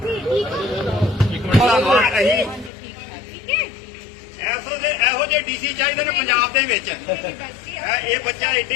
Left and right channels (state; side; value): drops out; right; at 2.7 s